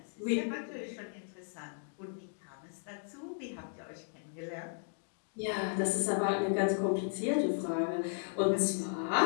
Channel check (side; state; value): right; silent; digital silence